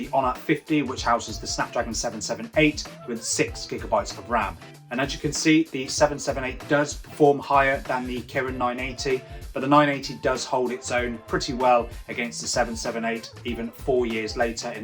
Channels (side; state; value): both; identical; correlation 1.00